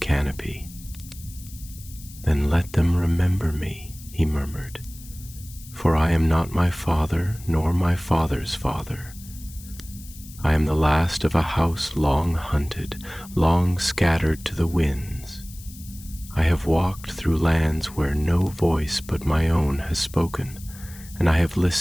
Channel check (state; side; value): noise; left; hiss, 19 dB below the sound